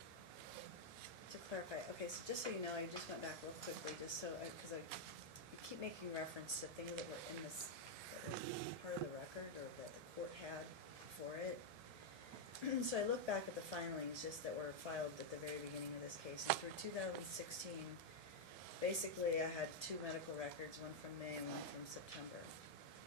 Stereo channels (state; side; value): late; left; 1.7 ms